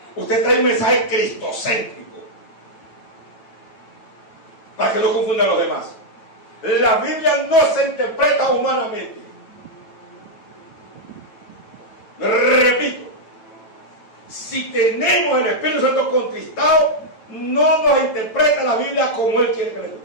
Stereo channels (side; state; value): right; late; 9.1 ms